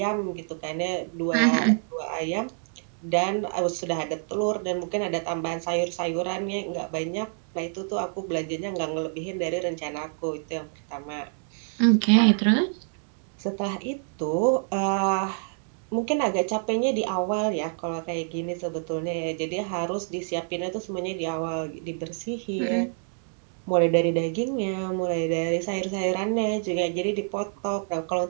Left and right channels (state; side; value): silent; left; 60 dB below the other